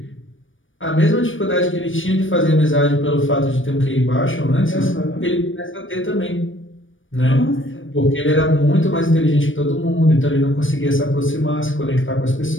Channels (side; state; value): right; late; 0.57 ms